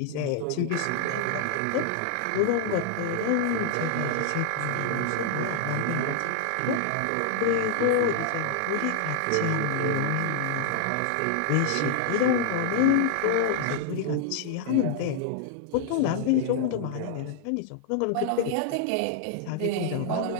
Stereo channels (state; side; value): different; both; correlation 0.00